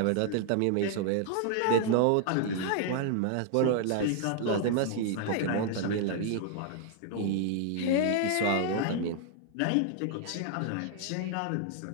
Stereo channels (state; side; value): different; both; correlation 0.00